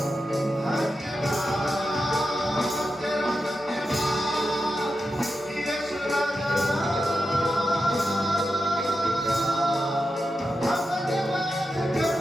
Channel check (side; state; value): both; normal; correlation 0.89